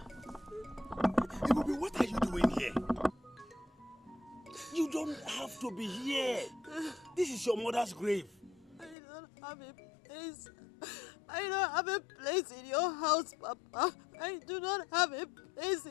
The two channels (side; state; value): right; drops out; at 9.0 s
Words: Ibubi, what are you doing here? You don't have to be here. This is your mother's grave. I don't have a place. I don't have a place in your house, Papa. I do not have a place